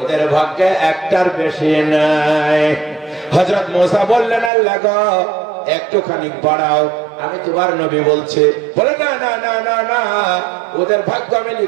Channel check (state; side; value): drops out; left; at 4.5 s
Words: ভাগ্যে একটার বেশি নাই। হযরত মুসা বললেন, আল্লাহ গো একটুখানি বাড়াও, আমি তোমার নবী বলছি। বলে না না না না না, ওদের ভাগ্য আমি